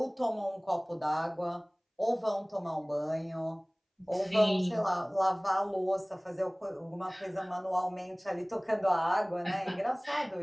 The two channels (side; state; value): both; identical; correlation 1.00